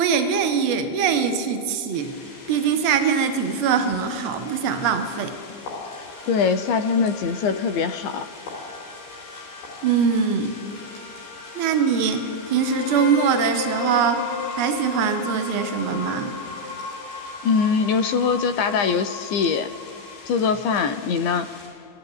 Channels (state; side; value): late; right; 14 ms